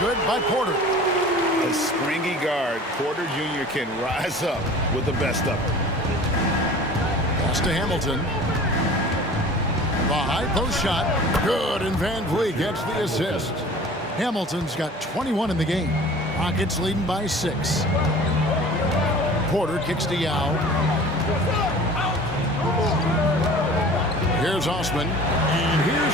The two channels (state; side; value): normal; both; correlation 0.43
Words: by Porter. A springy guard, Porter Jr. can rise up with the best of them. Pass to Hamilton. The high post shot. Good, and Van Vliet gets the assist. Hamilton's got 21 in the game. Rockets leading by 6. Porter kicks to Yao. Here's Osman. And